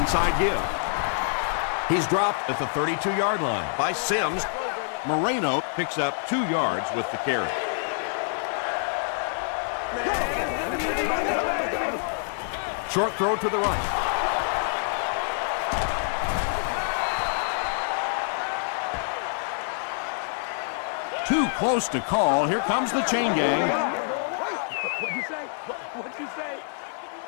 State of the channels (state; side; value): silent; right; 61 dB below the other